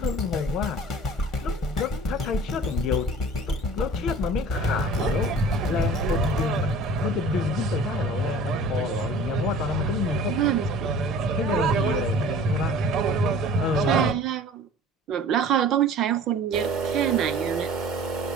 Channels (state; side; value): normal; both; correlation 0.44